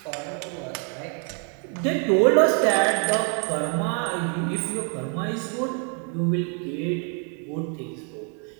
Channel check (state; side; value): quieter; left; 39.2 dB